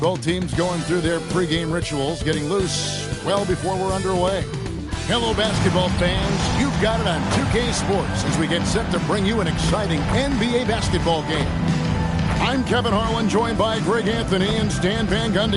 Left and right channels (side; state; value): both; identical; correlation 1.00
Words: teams going through their pregame rituals, getting loose well before we're underway. Hello, basketball fans. You've got it on 2K Sports as we get set to bring you an exciting NBA basketball game. I'm Kevin Harlan, joined by Greg Anthony and Stan Van